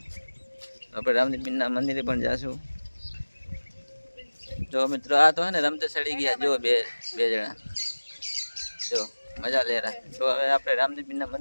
આપણે રામદેવપીરના મંદિરે પણ જાશું. જો મિત્રો આ તો હે ને રમતે ચડી ગયા જો બે જણા, જો મજા લે રહ્યા. તો હવે આપણે રામદેવપીરના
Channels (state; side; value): inverted; both; correlation -1.00